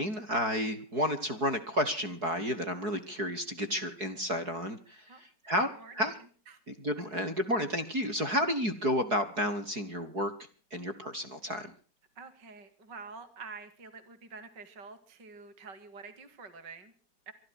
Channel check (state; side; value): late; left; 4.7 ms